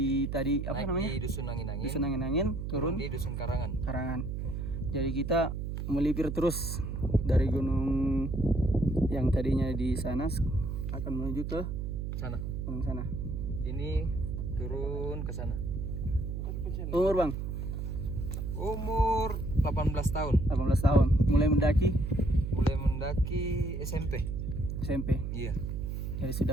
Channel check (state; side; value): noise; right; hum, 3 dB below the sound